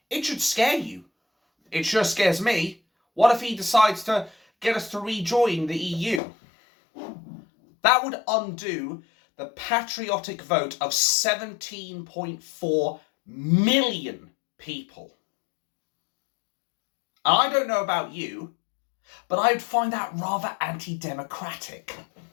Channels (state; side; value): drops out; right; at 6.2 s